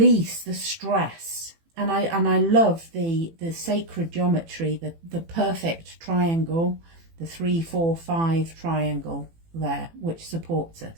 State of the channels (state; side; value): late; left; 18 ms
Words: the stress. And I love the sacred geometry, the perfect triangle, the 3-4-5 triangle there, which supports